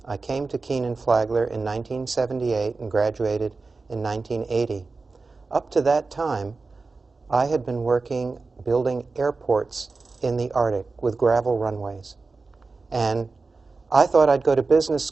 I came to Kenan Flagler in 1978 and graduated in 1980. Up to that time, I had been working building airports in the Arctic with gravel runways. And I thought I'd go to business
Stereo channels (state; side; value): quieter; left; 4.0 dB